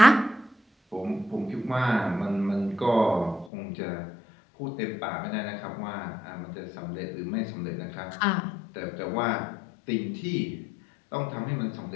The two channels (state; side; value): drops out; right; at 3.5 s